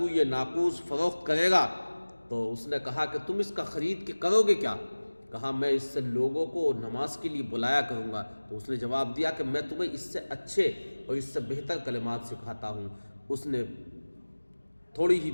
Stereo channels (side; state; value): both; inverted; correlation -1.00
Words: یہ ناقوس فروخت کرے گا؟ تو اس نے کہا کہ تم اس کا خرید کے کرو گے کیا؟ کہا میں اس سے لوگوں کو نماز کے لیے بلایا کروں گا۔ تو اس نے جواب دیا کہ میں تمہیں اس سے اچھے اور اس سے بہتر کلمات سکھاتا ہوں۔ اس نے تھوڑی ہی